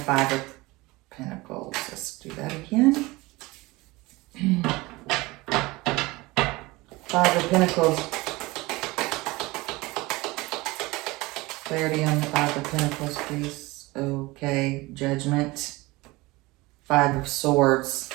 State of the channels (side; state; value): left; quieter; 21.8 dB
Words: of Pentacles. Let's do that again. Five of Pentacles. Clarity on the Five of Pentacles, please. Okay, Judgment. Five of Swords,